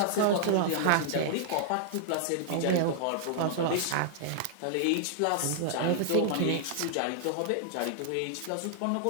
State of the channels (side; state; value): both; different; correlation -0.01